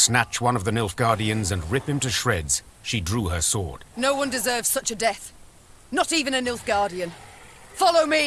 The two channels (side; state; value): both; identical; correlation 1.00